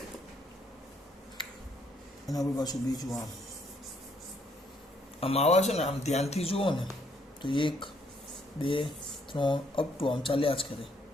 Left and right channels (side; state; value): both; normal; correlation 0.69